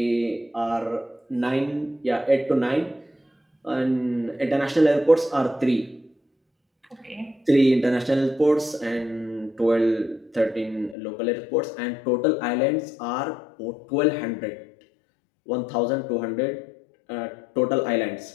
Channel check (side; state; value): right; drops out; at 11.0 s